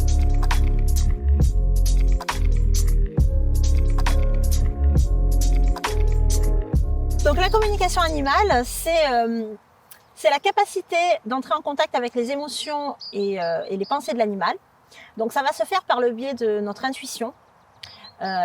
Donc la communication animale, c'est la capacité d'entrer en contact avec les émotions et les pensées de l'animal. Donc ça va se faire par le biais de notre intuition.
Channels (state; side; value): identical; both; correlation 1.00